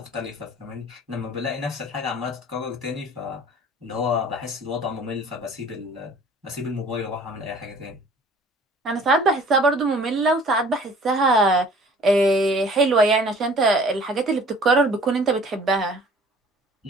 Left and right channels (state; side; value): normal; both; correlation 0.50